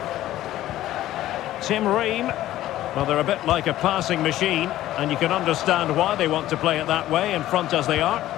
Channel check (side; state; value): right; quieter; 14.2 dB